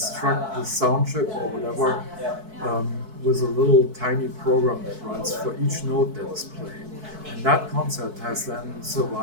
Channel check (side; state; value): left; late; 4.6 ms